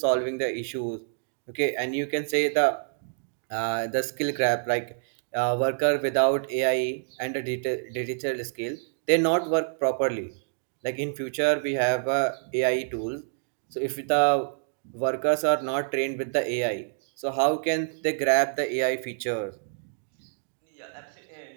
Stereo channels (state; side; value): silent; left; digital silence